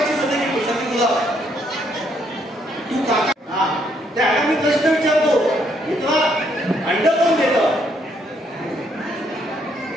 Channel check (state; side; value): normal; both; correlation 0.71